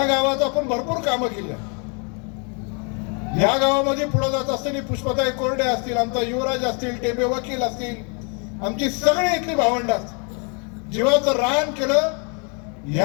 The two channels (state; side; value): quieter; right; 37.1 dB